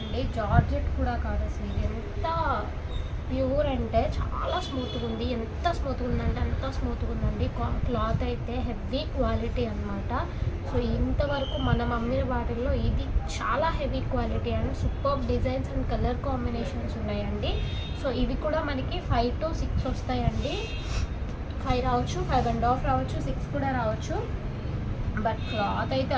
జార్జెట్ కూడా కాదు, అసలు ఇది ఎంత ప్యూర్ అంటే చాలా స్మూత్గా ఉంది. ఎంత స్మూత్గా ఉందంటే అంత స్మూత్గా ఉందండి. క్లాత్ అయితే హెవీ క్వాలిటీ అనమాట. సో ఇంతవరకు మనం అమ్మిన వాటిల్లో ఇది చాలా heavy quality and super designs and colour combinations ఉన్నాయండి. సో ఇవి కూడా మనకి 5 to 6 వస్తాయండి. 5 రావచ్చు, 5.5 రావచ్చు, 6 కూడా రావచ్చు. బట్ క్లాత్ అయితే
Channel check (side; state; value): both; identical; correlation 1.00